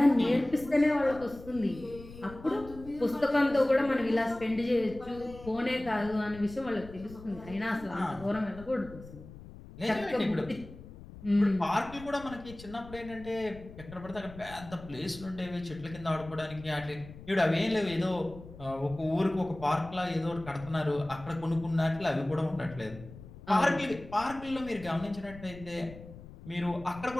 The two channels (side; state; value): left; noise; rumble, 16 dB below the sound